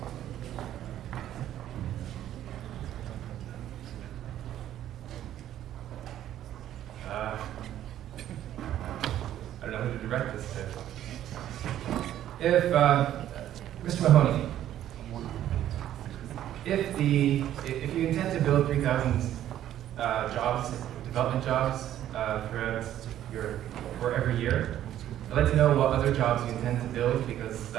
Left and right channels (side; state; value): left; quieter; 11.9 dB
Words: I don't know who to direct this to. If, Mr. Mahoney, if you intend to build 3,000 jobs, development jobs, for every year, I'd like to know what other jobs you intend to build, because